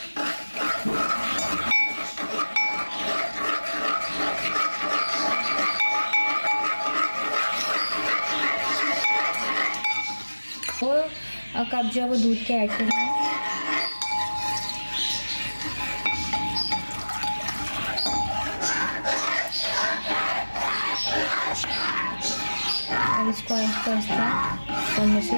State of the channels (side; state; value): both; inverted; correlation -1.00